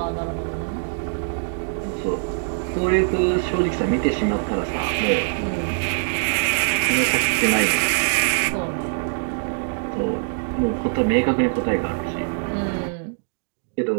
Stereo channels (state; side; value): silent; left; digital silence